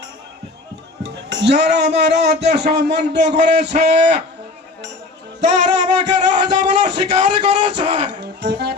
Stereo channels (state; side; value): quieter; right; 3.4 dB